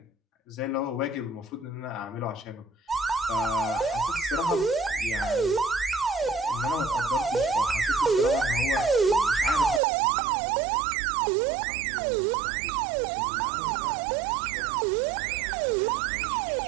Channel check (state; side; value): drops out; left; at 9.8 s